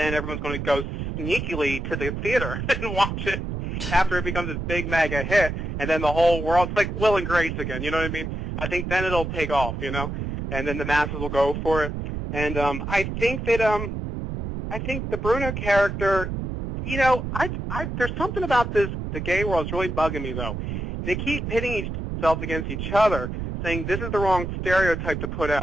everyone's going to go sneakily to the theater and watch it after it becomes this big mega hit, and then the whole world, it's like Will and Grace again, you know what I mean? I think then it'll take off, you know, and then the masses will go for it. And I think that I think the Bruno character, you know, there's something about the gay world that's really bugging me, though. They keep pitting themselves against each other, saying this is the wrong stereotype to put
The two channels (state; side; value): noise; right; rumble, 4 dB below the sound